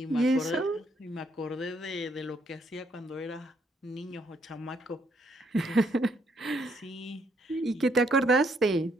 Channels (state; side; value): normal; both; correlation 0.71